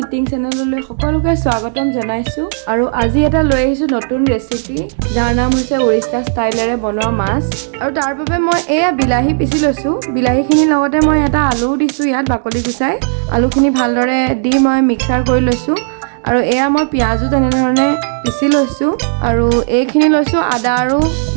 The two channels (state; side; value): silent; left; digital silence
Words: ইটিং চেনেললৈ সকলোকে স্বাগতম জনাইছোঁ। আৰু আজি এটা লৈ আহিছোঁ নতুন ৰেচিপি, যাৰ নাম হৈছে উৰিষ্যা ষ্টাইলেৰে বনোৱা মাছ। আৰু তাৰ বাবে মই এয়া বিলাহী পিচি লৈছোঁ। বিলাহীখিনিৰ লগতে মই এটা আলু দিছোঁ, ইয়াত বাকলি গুচাই আলুখিনি ভালদৰে দি মই মিক্সাৰ কৰি লৈছোঁ। আৰু এয়া মই পিঁয়াজো তেনেধৰণে পিচি লৈছোঁ। আৰু এইখিনি লৈছোঁ আদা আৰু